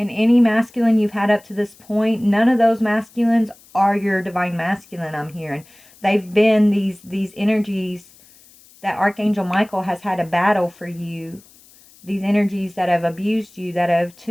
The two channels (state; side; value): noise; left; hiss, 26 dB below the sound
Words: any masculine you've had up to this point, none of those masculines are your divine masculine, I'm hearing. They've been these energies that Archangel Michael has had a battle for you. These energies that have abused you, that have